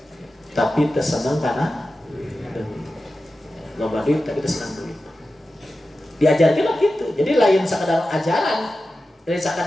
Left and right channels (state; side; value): normal; both; correlation 0.93